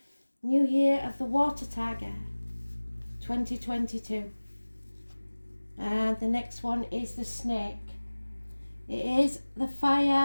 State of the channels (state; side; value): inverted; both; correlation -1.00